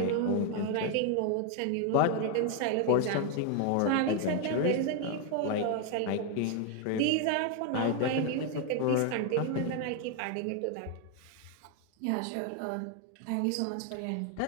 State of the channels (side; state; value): both; different; correlation 0.01